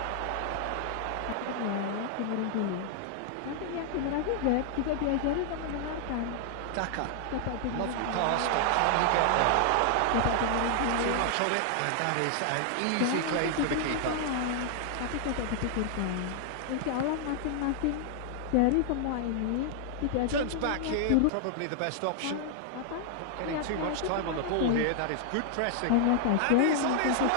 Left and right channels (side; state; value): both; different; correlation 0.00